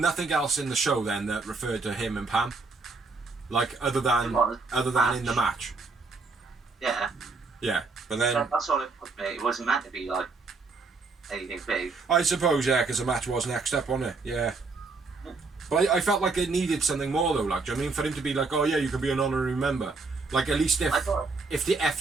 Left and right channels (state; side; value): quieter; left; 4.0 dB